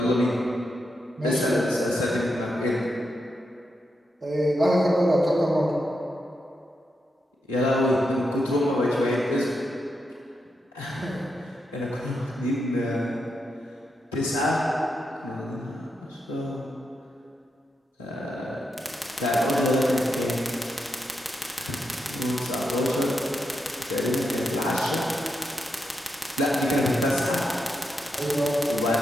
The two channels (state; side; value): normal; both; correlation 0.84